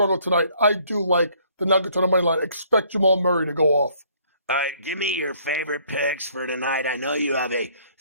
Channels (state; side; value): inverted; both; correlation -0.61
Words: tonight. I do like the Nuggets on the money line. Expect Jamal Murray to go off. All right, give me your favorite picks for tonight. I know you have a